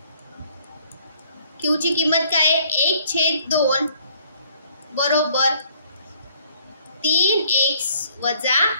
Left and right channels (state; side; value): inverted; both; correlation -0.61